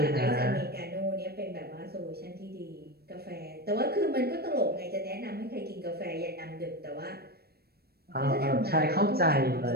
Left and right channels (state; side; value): late; left; 0.46 ms